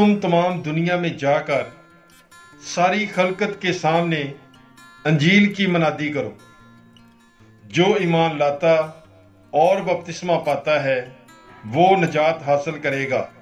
तमाम दुनिया में जाकर सारी खलकत के सामने अंजील की मनादी करो। जो ईमान लाता और बपतिस्मा पाता है वो नजात हासिल करेगा,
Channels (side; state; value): both; identical; correlation 1.00